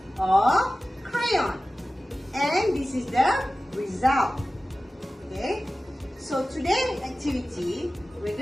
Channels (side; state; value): both; normal; correlation 0.96